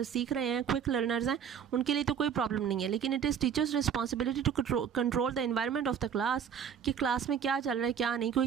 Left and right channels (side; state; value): left; quieter; 7.9 dB